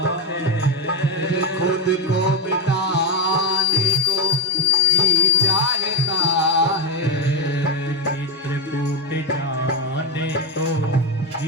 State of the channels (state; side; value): normal; both; correlation 0.09